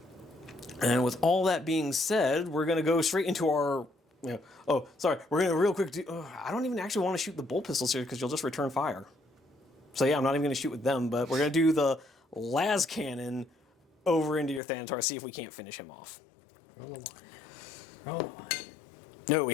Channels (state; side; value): drops out; right; at 14.6 s